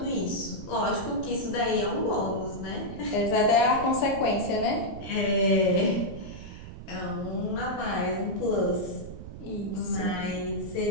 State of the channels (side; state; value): right; noise; rumble, 12 dB below the sound